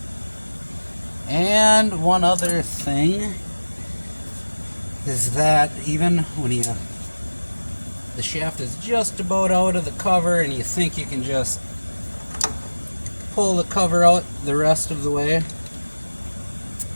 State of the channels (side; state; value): both; inverted; correlation -1.00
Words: And one other thing is that even when the shaft is just about out of the cover and you think you can just pull the cover out the rest of the way,